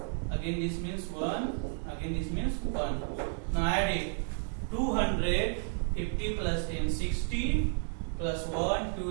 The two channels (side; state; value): left; silent; 56 dB below the other